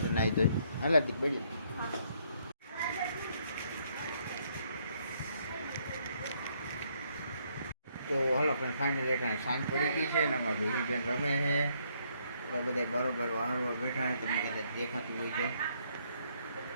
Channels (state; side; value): inverted; both; correlation -0.70